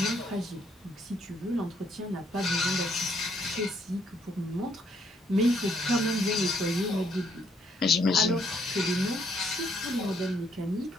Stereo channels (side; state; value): both; normal; correlation 0.70